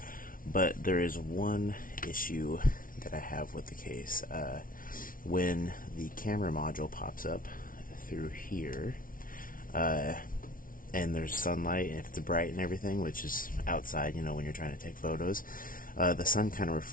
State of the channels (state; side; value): late; right; 0.40 ms